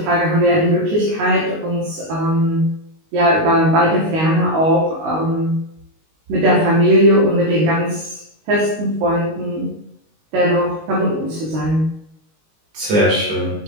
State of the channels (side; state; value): left; late; 19 ms